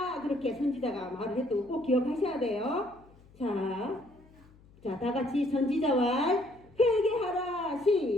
그렇게 선지자가 말을 했던 거 꼭 기억하셔야 돼요. 자, 다 같이 선지자 말 회개하라.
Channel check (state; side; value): noise; left; hum, 27 dB below the sound